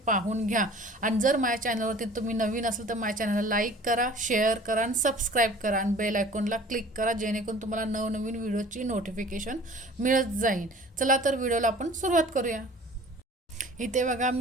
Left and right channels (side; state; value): both; normal; correlation 0.47